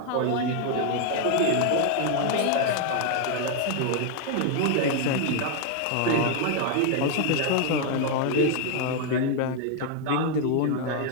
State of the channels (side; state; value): both; different; correlation 0.00